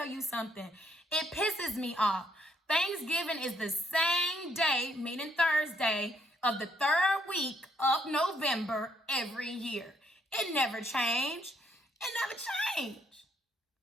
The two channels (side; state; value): both; normal; correlation 0.71